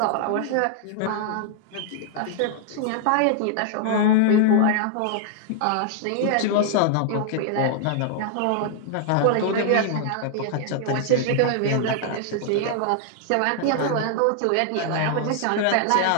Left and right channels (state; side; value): different; both; correlation 0.00